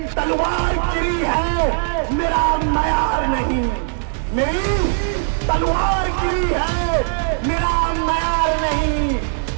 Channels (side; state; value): left; silent; digital silence